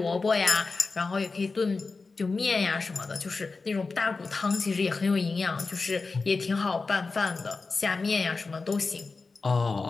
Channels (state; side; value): quieter; right; 4.1 dB